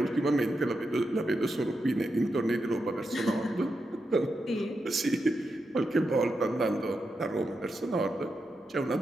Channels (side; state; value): both; normal; correlation 0.86